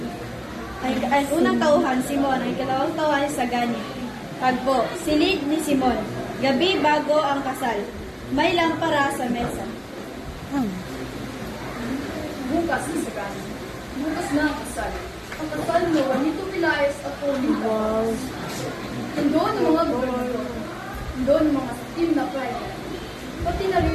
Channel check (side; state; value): both; identical; correlation 1.00